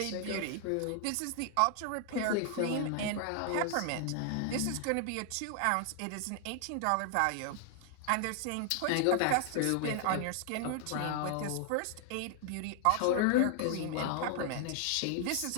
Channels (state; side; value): different; both; correlation 0.00